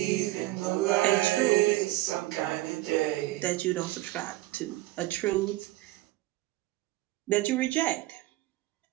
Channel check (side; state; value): left; quieter; 17.5 dB